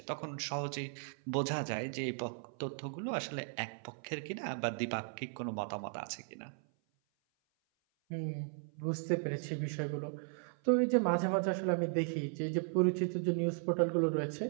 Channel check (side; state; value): left; silent; 53 dB below the other